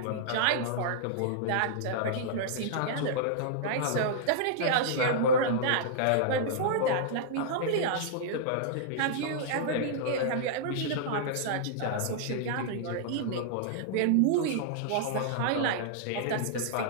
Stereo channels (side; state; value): both; different; correlation -0.02